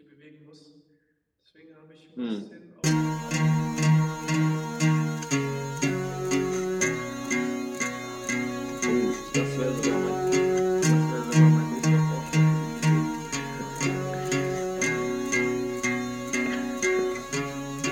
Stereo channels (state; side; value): identical; both; correlation 1.00